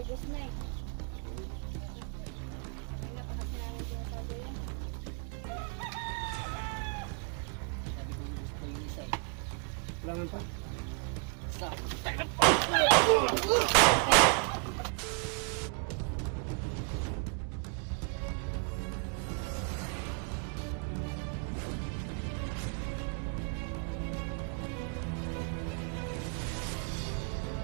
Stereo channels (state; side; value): quieter; left; 37.9 dB